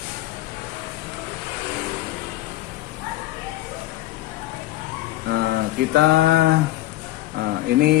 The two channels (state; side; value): quieter; right; 16.2 dB